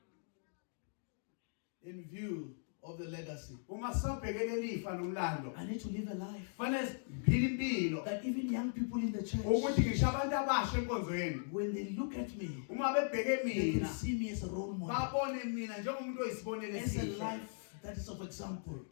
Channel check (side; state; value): right; silent; digital silence